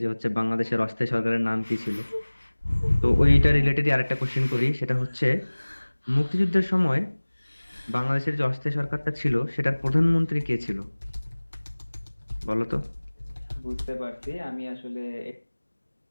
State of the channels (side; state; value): both; inverted; correlation -1.00